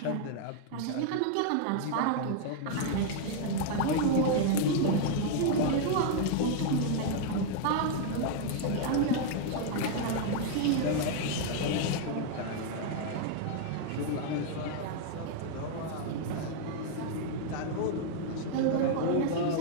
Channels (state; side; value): different; both; correlation 0.00